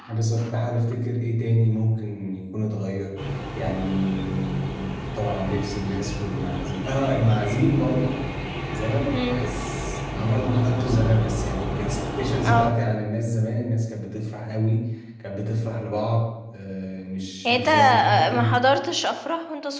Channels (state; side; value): identical; both; correlation 1.00